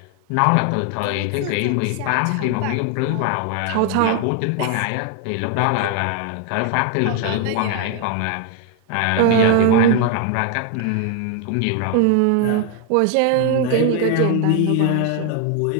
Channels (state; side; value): different; both; correlation 0.00